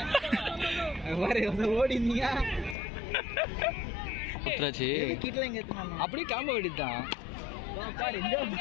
ஓடிந்தீங்க குத்துறாச்சு கிட்டல எங்க ஏத்துனாங்க அப்படியே காம்ப வேண்டியதுதான் பாரு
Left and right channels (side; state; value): right; drops out; at 2.8 s